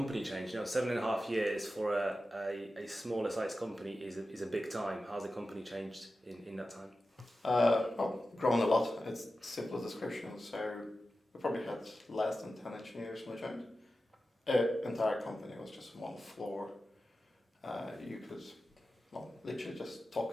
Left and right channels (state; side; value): normal; both; correlation 0.93